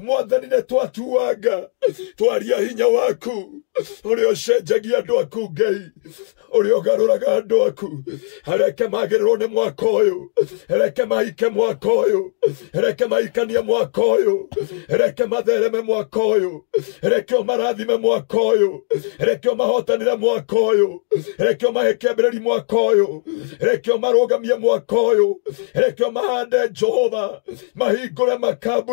nĩ twatuanga twaria hinya waku, ũrĩa ũcenjagia andũ aku Ngai, ũrĩa ũgarũraga andũ aku. Reke magĩrĩrwo nĩ mwaka ũyũ, reke mahike mwaka ũyũ, reke mahikanie mwaka ũyũ, reke mathereme mwaka ũyũ, reke ũmarathime mwaka ũyũ, reke ũmahotanĩre mwaka ũyũ, reke ũmahe kĩambĩrĩria mwaka ũyũ, reke ũmarũgamie mwaka ũyũ, reke ũmahande Jehova, mahingũre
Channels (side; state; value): right; silent; digital silence